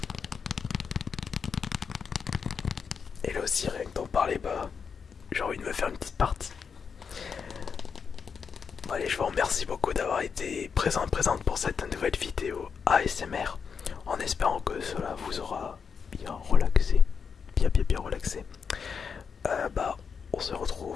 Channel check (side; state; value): right; quieter; 6.2 dB